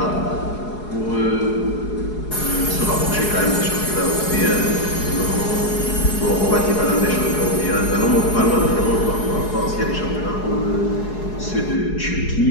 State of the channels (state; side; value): late; right; 4.8 ms